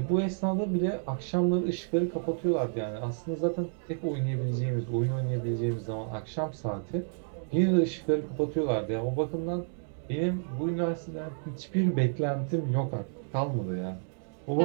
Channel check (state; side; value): silent; left; digital silence